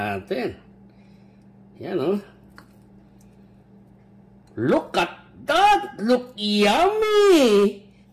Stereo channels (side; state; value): both; identical; correlation 1.00